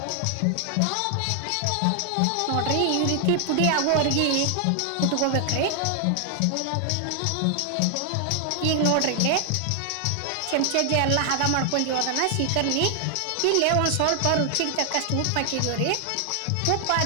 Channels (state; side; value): different; both; correlation 0.00